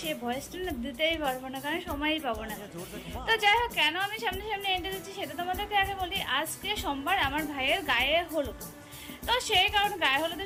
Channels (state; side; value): identical; both; correlation 1.00